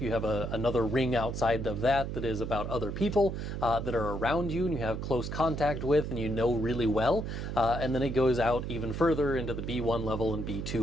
have another ring outside of that is about other people that are around you and you have close contact with and you know really well. And then it goes out even further into the B1 level and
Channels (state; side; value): noise; right; hum, 5 dB below the sound